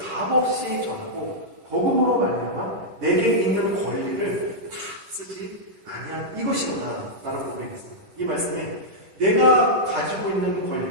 전하고 복음으로 말미암아 내게 있는 권리를 다 쓰지 아니한 이것이로다 라는 고백이 있습니다. 이 말씀에 내가 가지고 있는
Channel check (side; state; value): left; late; 10 ms